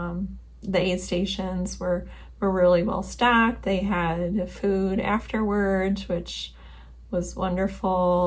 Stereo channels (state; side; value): identical; both; correlation 1.00